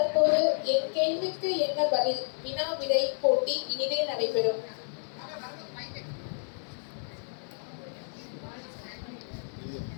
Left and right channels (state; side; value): silent; right; digital silence